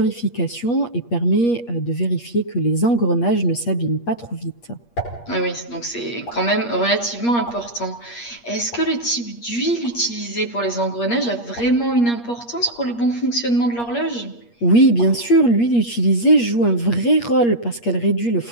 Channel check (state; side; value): late; right; 8.5 ms